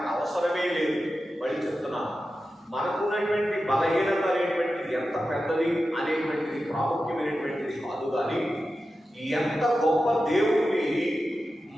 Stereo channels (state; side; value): normal; both; correlation 0.92